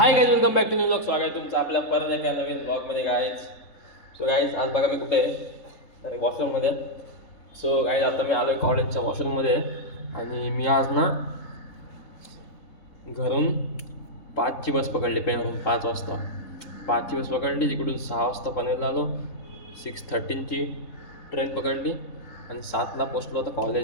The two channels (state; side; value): late; right; 3.7 ms